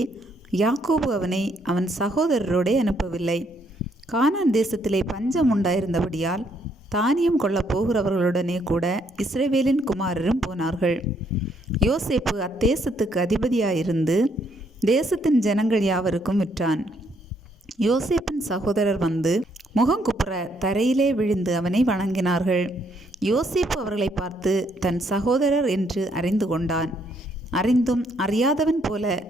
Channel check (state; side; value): normal; both; correlation 0.71